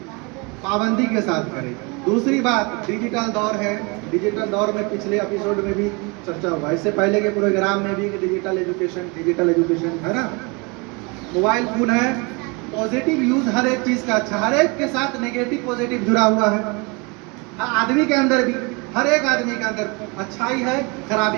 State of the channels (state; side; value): quieter; left; 29.4 dB